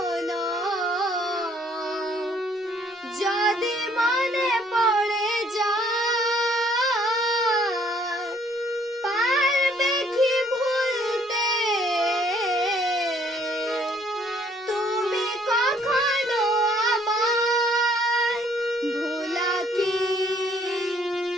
যদি মনে পড়ে যায়, পারবে কি ভুলতে তুমি কখনো আমায়? ভোলা কি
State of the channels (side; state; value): both; normal; correlation 0.63